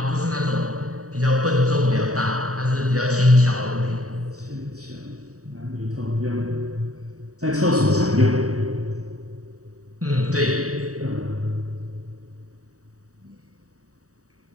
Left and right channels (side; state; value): left; late; 0.66 ms